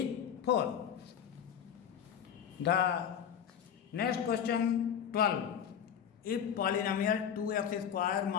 4. The next question 12. If polynomial 2x square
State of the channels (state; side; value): quieter; right; 8.5 dB